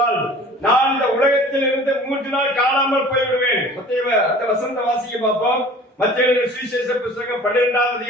நான் இந்த உலகத்தில் இருந்து 3 நாள் காணாமல் போய்விடுவேன். அந்த வசனத்தை வாசிக்க பார்ப்போம். மத்தேயு சுவிசேஷ புத்தகம் 12ஆம்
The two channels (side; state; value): both; normal; correlation 0.46